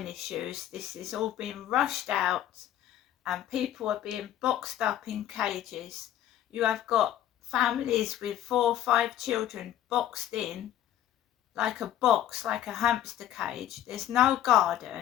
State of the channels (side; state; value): right; quieter; 11.8 dB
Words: issues, this is all being rushed out, and people are being boxed up in cages. You have got families with 4 or 5 children boxed in like a box, like a hamster cage. There's no